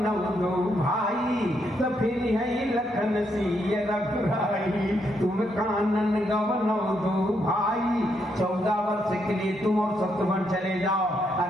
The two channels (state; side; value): normal; both; correlation 0.77